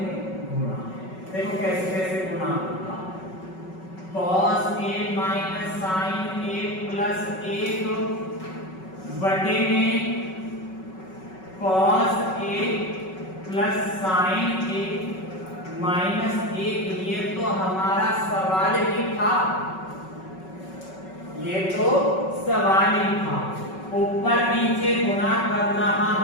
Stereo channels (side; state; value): right; late; 5.3 ms